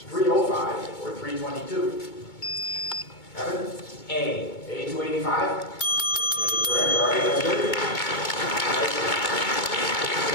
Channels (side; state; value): right; late; 2.2 ms